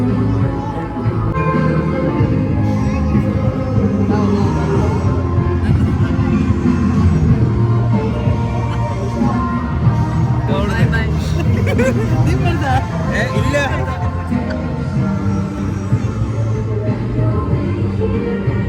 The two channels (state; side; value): identical; both; correlation 1.00